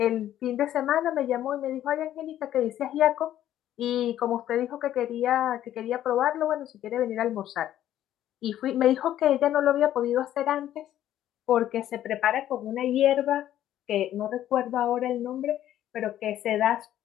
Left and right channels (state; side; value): quieter; right; 12.1 dB